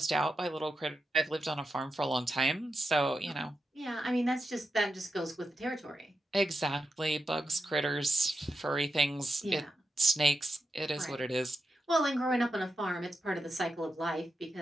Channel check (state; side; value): normal; both; correlation 0.88